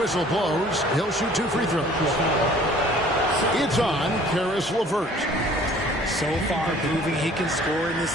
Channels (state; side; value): normal; both; correlation 0.53